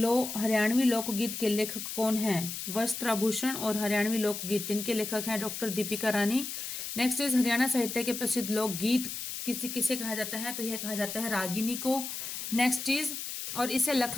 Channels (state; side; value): noise; left; hiss, 6 dB below the sound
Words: हरियाणवी लोकगीत के लेखक कौन हैं? वस्त्राभूषण और हरियाणवी लोकगीत, इनके लेखक हैं doctor Deepika Rani. Next is Haryana साहित्य के प्रसिद्ध लोकगीत किसे कहा जाता है? तो यह कहा जाता है रागिनी को। नेक्स्ट इज, और इसे